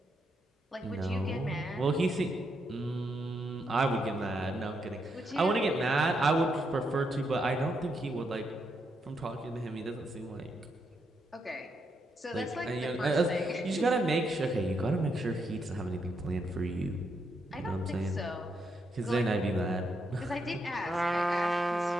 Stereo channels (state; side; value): normal; both; correlation 0.79